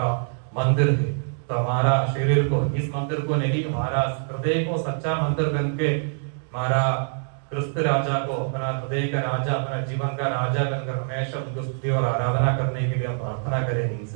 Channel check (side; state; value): left; silent; 62 dB below the other